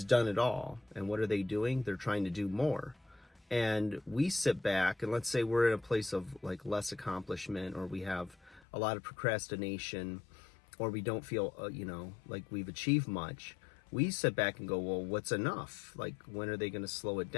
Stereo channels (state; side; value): drops out; right; at 8.6 s